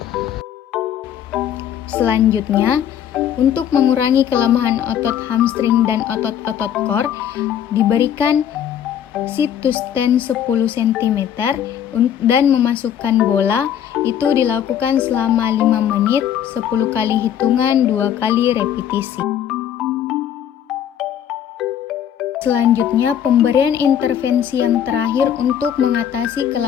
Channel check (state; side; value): quieter; right; 9.6 dB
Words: Selanjutnya, untuk mengurangi kelemahan otot hamstring dan otot-otot core, diberikan sit to stand 10 cm dan memasukkan bola. Itu dilakukan selama 5 menit, 10 kali hitungan 2 kali repetisi. Selanjutnya, pemberian intervensi yang terakhir untuk mengatasi